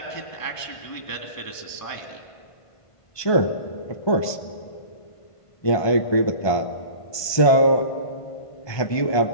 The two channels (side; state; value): right; late; 1.5 ms